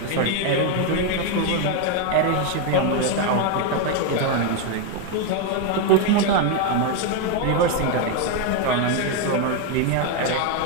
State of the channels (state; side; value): different; both; correlation 0.02